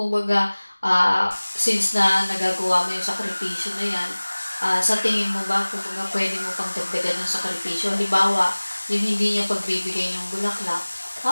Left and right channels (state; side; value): inverted; both; correlation -1.00